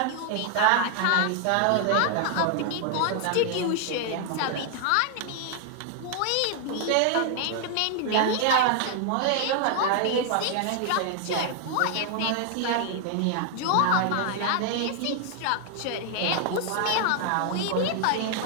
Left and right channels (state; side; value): different; both; correlation 0.00